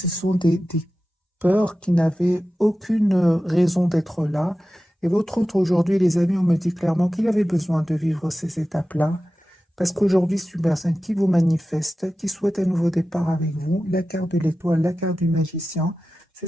sont peur, qui n'avait aucune raison d'être là. Et votre autre aujourd'hui, les amis, on me dit clairement qu'il avait besoin de vivre ces étapes-là. Parce qu'aujourd'hui, c'est une personne qui vous manifeste, qui souhaite un nouveau départ avec vous. La carte de l'étoile, la carte du magicien.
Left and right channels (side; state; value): both; normal; correlation 0.94